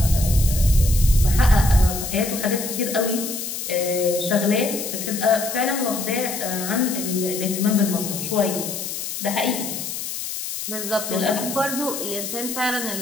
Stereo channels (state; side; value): noise; left; hiss, 6 dB below the sound